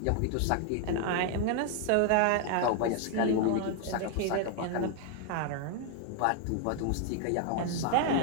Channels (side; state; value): both; different; correlation 0.00